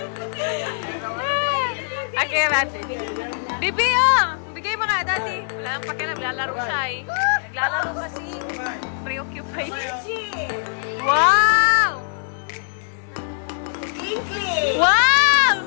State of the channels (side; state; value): right; silent; digital silence